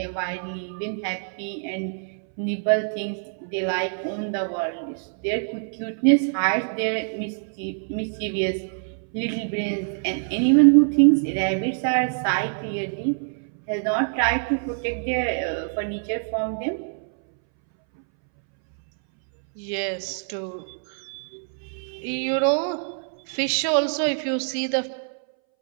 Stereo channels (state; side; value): silent; left; 62 dB below the other